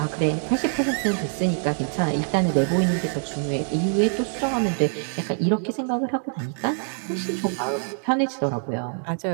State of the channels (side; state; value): left; silent; 62 dB below the other